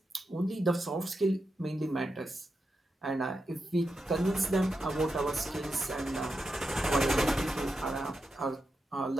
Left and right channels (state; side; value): normal; both; correlation 0.88